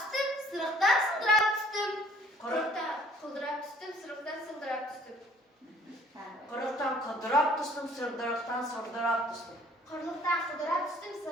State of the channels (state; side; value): normal; both; correlation 0.57